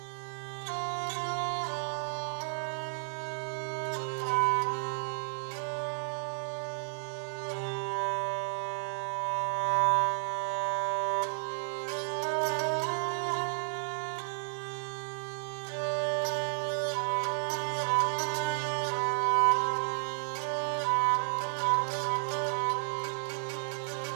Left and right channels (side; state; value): left; silent; 56 dB below the other